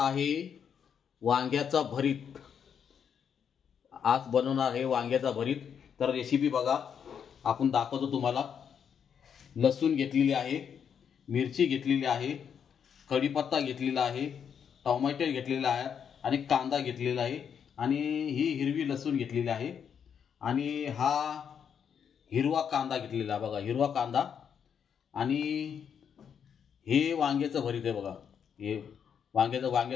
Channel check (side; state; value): right; quieter; 7.7 dB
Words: वांग्याचा भरीत। आज बनवणार आहे वांग्याचा भरीत। तर रेसिपी बघा, आपण दाखवतो तुम्हाला। लसूण घेतलेली आहे, मिरची घेतलेली आहे, कढीपत्ता घेतलेला आहे, टोमॅटो घेतलेला आहे आणि कांदा घेतलेला आहे आणि ही हिरवी लसूण घेतलेली आहे आणि हा हिरवा कांदा घेतलेला बघा, हिरवा कांदा आणि हे वांग्याचं भरीत आहे बघा। हे